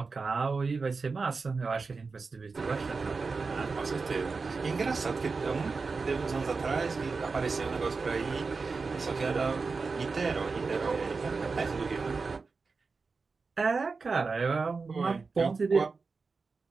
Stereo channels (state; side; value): quieter; left; 4.4 dB